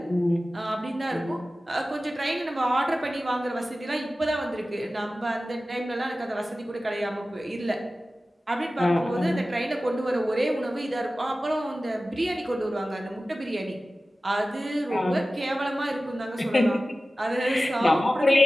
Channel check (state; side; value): normal; both; correlation 0.96